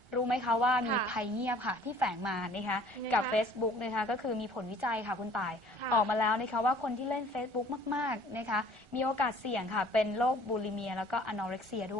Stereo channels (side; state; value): left; late; 1.4 ms